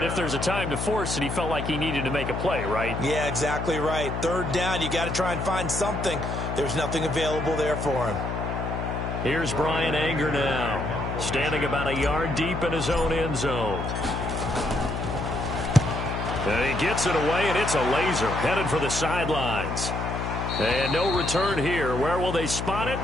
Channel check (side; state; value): left; noise; hum, 3 dB below the sound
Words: if there's a time to force it, he felt like he needed to make a play, right? Yeah, exactly right. Third down, you got to try and find something. There's nothing available there for him. Here's Brian Anger now, standing about a yard deep in his own end zone. And he gets it away, and it's a laser headed for the sidelines. And no return here. Where will they spot it?